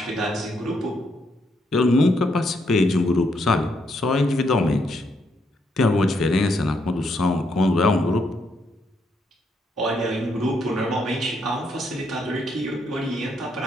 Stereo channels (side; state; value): both; normal; correlation 0.76